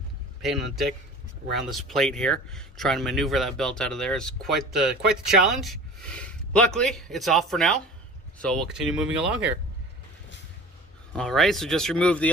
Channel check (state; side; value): normal; both; correlation 0.41